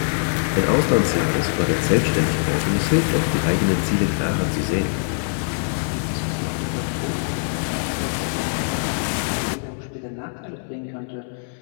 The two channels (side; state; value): right; silent; digital silence